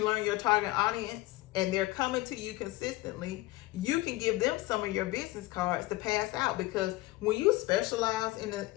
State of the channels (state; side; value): quieter; right; 19.2 dB